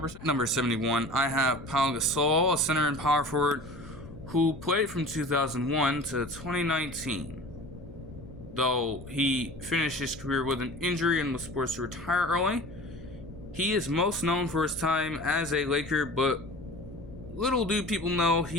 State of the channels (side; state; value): left; noise; rumble, 17 dB below the sound